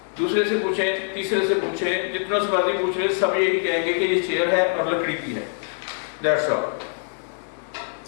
دوسرے سے پوچھیں, تیسرے سے پوچھیں, جتنا سے باتیں پوچھیں, سب یہی کہیں گے کہ یہ چیئر ہے اور لکڑی کی ہے. That's all.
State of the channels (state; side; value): silent; right; digital silence